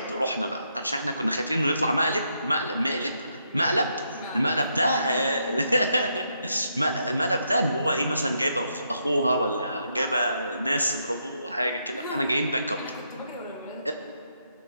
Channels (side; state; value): both; inverted; correlation -0.78